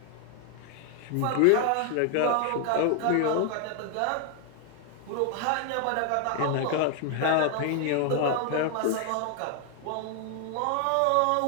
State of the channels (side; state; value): both; different; correlation 0.00